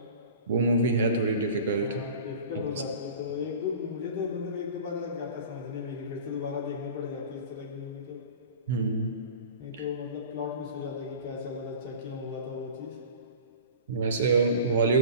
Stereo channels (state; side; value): inverted; both; correlation -0.39